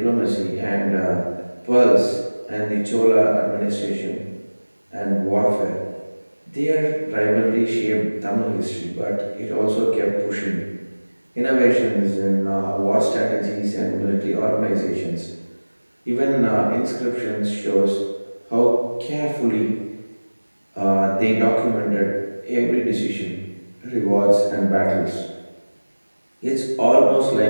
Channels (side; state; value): both; inverted; correlation -1.00